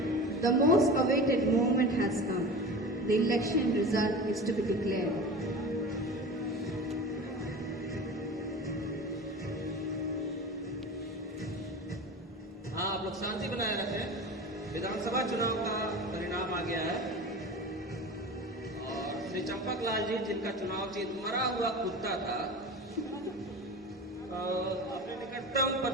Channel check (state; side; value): normal; both; correlation 0.32